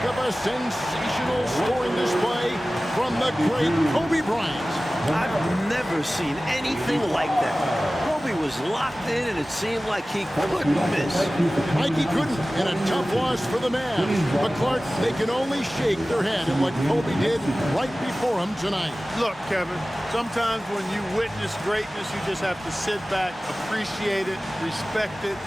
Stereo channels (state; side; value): normal; both; correlation 0.97